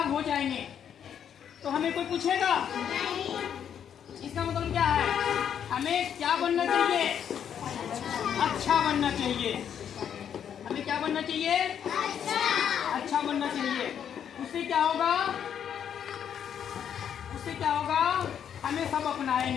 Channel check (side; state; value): right; quieter; 8.7 dB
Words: हो जाएंगे तो हमें कोई पूछेगा? इसका मतलब क्या है? हमें क्या बनना चाहिए? अच्छा बनना चाहिए। हमें क्या बनना चाहिए? अच्छा बनना चाहिए। उससे क्या होगा? उससे क्या होगा? हमें सब